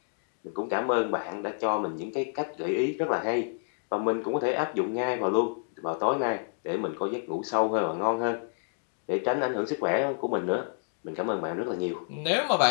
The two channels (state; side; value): silent; right; digital silence